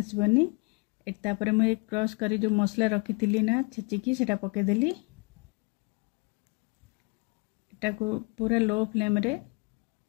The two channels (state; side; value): quieter; right; 31.0 dB